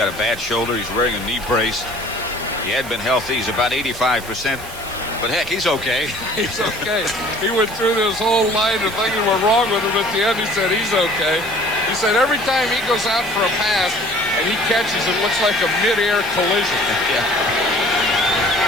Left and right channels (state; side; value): noise; right; hiss, 15 dB below the sound